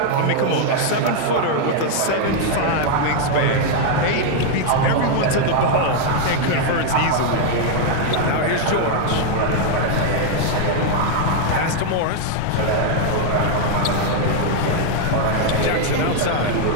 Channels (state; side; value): different; both; correlation 0.00